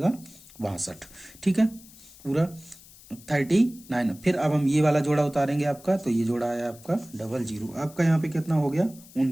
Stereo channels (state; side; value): noise; left; hiss, 22 dB below the sound